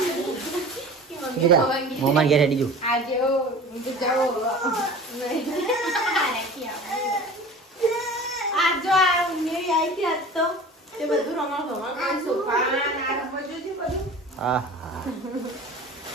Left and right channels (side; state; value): both; normal; correlation 0.39